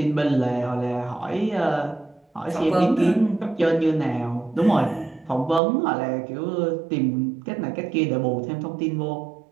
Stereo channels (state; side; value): drops out; left; at 5.6 s